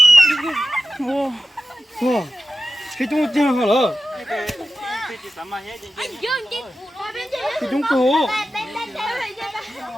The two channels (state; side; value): normal; both; correlation 0.92